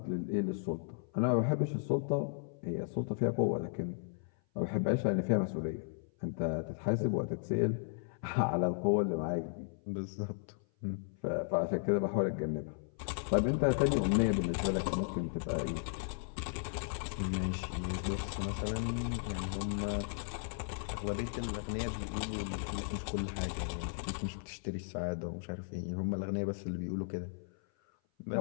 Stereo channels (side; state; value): right; silent; 54 dB below the other